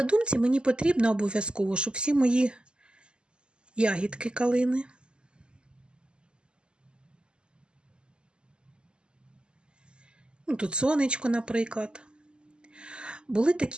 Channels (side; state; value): left; late; 0.049 ms